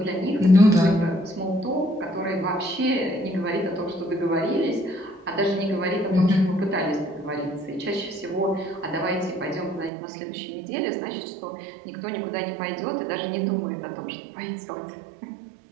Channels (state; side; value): drops out; left; at 9.9 s